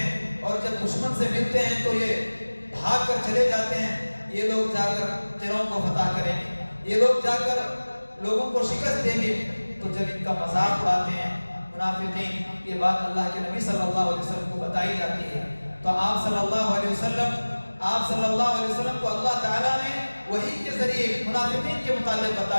اور جب دشمن سے ملتے ہیں تو یہ بھاگ کر چلے جاتے ہیں. یہ لوگ جا کر قلعوں کو فتح کریں گے، یہ لوگ جا کر لوگوں کو شکست دیں گے. تو جب ان کا مذاق اڑاتے ہیں منافقین، یہ بات اللہ کے نبی صلی اللہ علیہ وسلم کو بتائی جاتی ہے. تو آپ صلی اللہ علیہ وسلم کو اللہ تعالیٰ نے وحی کے ذریعے منافقین کے متعلق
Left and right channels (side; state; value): both; inverted; correlation -1.00